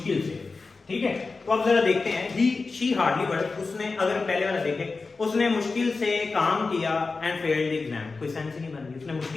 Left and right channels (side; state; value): right; quieter; 4.1 dB